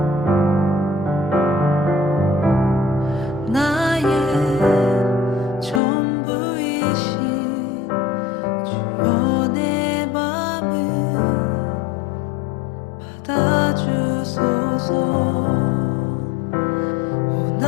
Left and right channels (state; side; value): drops out; right; at 5.8 s